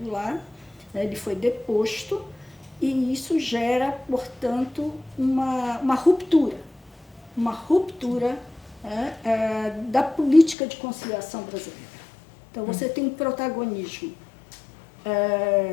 ele foi deposto, e isso gera, portanto, uma ruptura da política de conciliação brasileira. Então, você tem um protagonismo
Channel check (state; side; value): drops out; right; at 10.6 s